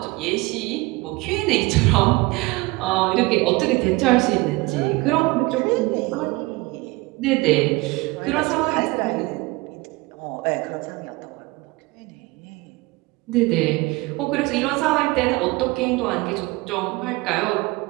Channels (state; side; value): quieter; left; 22.8 dB